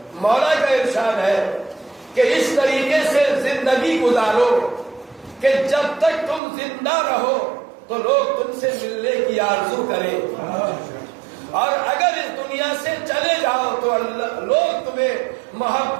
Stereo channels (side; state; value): left; drops out; at 6.4 s